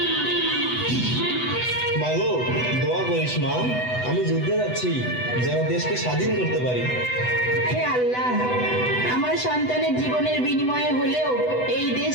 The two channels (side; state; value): right; late; 8.0 ms